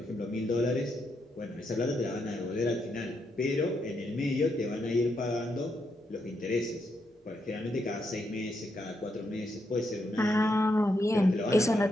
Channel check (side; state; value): both; normal; correlation 0.80